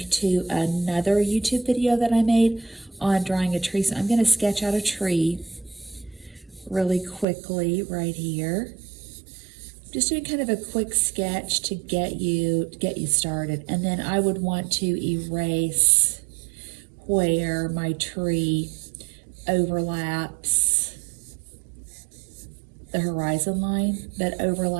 to another YouTube video that I made on drawing a tree. So I'm going to sketch out a tree really quickly right here. Just doing kind of a quick sketch to get you started. And then I would want to erase where my tree overlaps the horizon line. But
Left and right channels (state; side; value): drops out; left; at 7.2 s